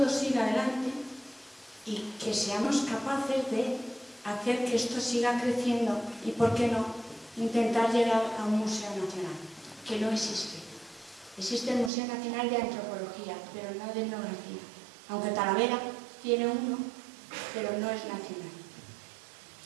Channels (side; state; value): left; drops out; at 11.9 s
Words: siga adelante y que seamos capaces de hacer que esto siga creciendo y, ¿por qué no?, intentar llegar a un museo nacional, que no existe. Existe el Museo Nacional de Antropología, pero no de Etnografía, aunque Talavera tiene uno, pero no es nacional.